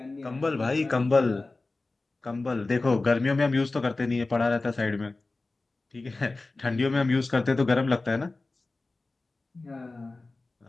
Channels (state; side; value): quieter; right; 3.4 dB